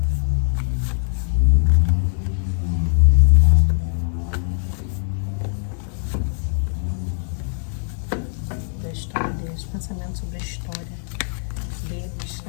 Da história deles, pensamento sobre a história deles,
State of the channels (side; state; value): right; silent; digital silence